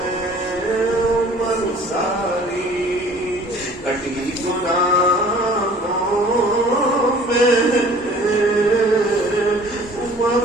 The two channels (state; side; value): normal; both; correlation 0.50